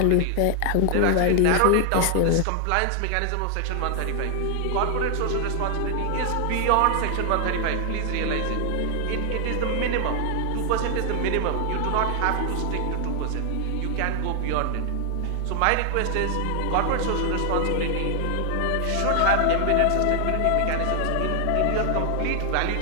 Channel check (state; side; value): different; both; correlation 0.00